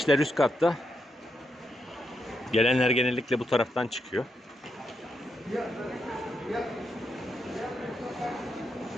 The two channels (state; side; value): normal; both; correlation 0.82